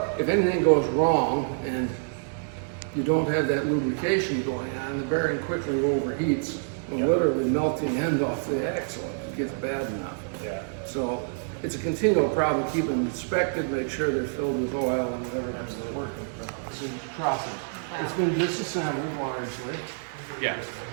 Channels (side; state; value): left; silent; digital silence